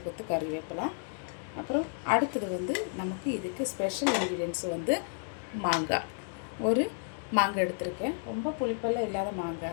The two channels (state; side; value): silent; right; digital silence